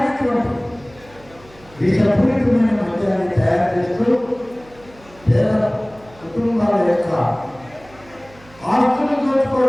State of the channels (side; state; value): right; noise; hum, 25 dB below the sound